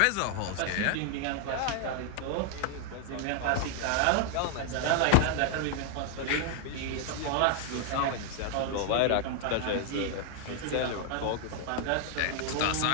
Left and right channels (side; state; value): both; different; correlation 0.00